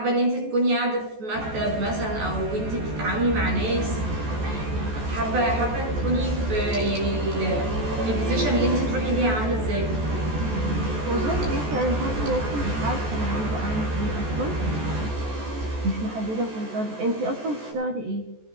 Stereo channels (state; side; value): late; left; 14 ms